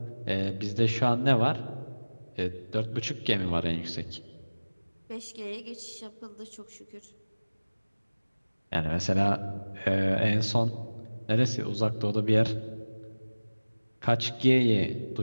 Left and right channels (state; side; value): inverted; both; correlation -1.00